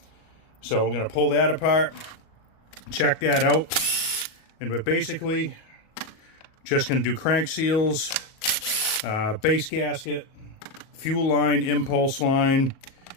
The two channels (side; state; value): right; late; 37 ms